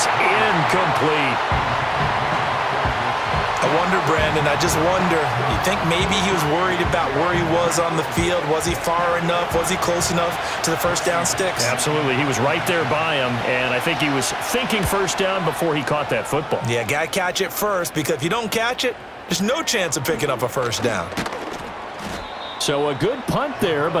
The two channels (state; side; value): identical; both; correlation 1.00